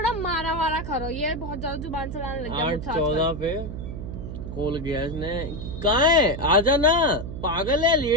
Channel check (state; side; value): noise; right; hum, 8 dB below the sound